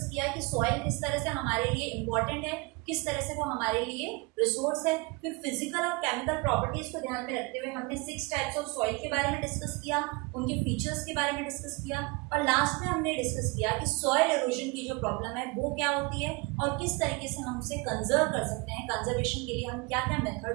किया कि सॉइल किस तरह से हमारे लिए इम्पोर्टेंट है, किस तरह से वो हमारे लिए रिसोर्स है। फिर फिजिकल और केमिकल प्रॉपर्टीज को ध्यान में रखते हुए हमने 6 टाइप्स ऑफ सॉइल के बारे में डिस्कस किया, उनके फीचर्स के बारे में डिस्कस किया और लास्ट में हमने डिस्कस किया कि सॉइल इरोजन की जो प्रॉब्लम है वो क्या होती है और किस तरीके से हम उसे कंजर्व कर सकते हैं। कंजर्वेशन के लिए हम क्या क्या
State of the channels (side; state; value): left; quieter; 26.9 dB